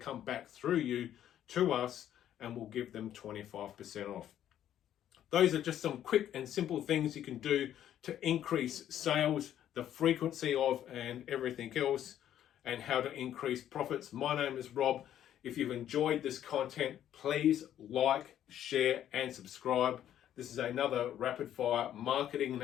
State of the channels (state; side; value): quieter; right; 11.0 dB